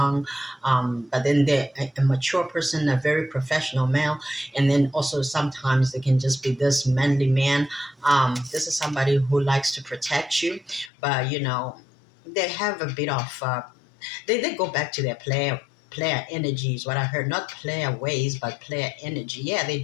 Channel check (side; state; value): right; drops out; at 10.9 s